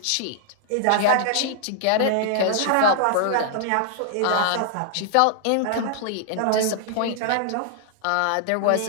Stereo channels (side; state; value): both; different; correlation -0.01